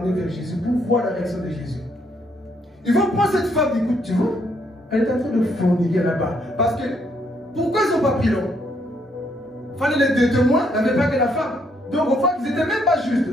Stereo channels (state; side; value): normal; both; correlation 0.72